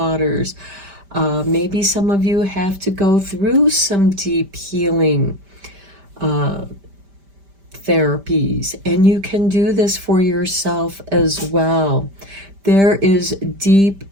Maybe some of you have to go through some deep healing therapies, and you can do this for yourself as well. There is deep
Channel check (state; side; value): late; left; 5.1 ms